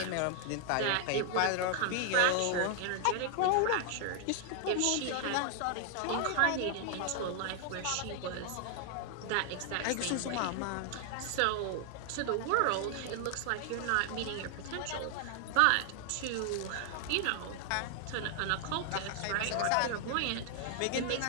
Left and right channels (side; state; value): both; different; correlation 0.00